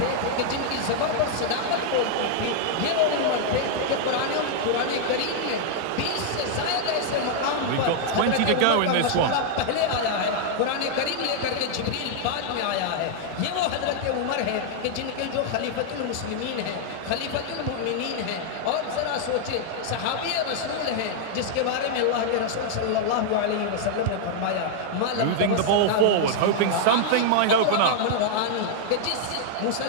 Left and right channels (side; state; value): both; different; correlation -0.01